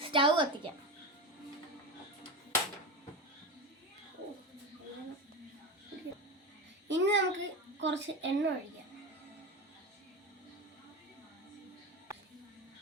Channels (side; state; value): both; normal; correlation 0.21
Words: സ്റ്റൗ കത്തിക്കാം. ഇനി നമുക്ക് കുറച്ച് എണ്ണ ഒഴിക്കാം.